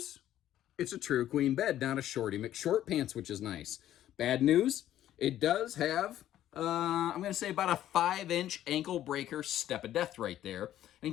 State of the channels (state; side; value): quieter; right; 12.3 dB